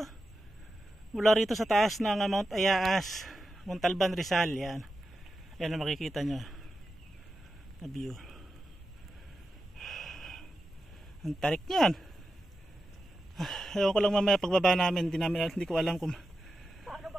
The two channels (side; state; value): both; normal; correlation 0.90